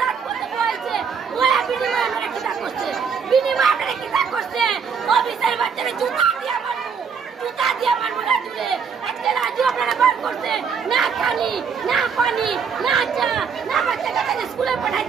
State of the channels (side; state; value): left; quieter; 6.4 dB